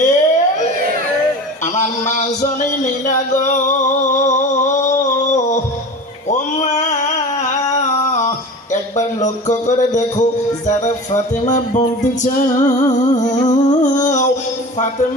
আমার মা জনে নীলা গো, ও মা একবার লক্ষ্য করে দেখো, যারা ফাতেমা বলতে চাও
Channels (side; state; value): both; normal; correlation 0.34